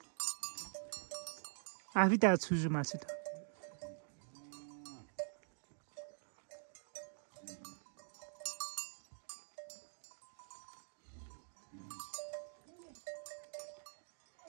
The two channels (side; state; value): left; silent; digital silence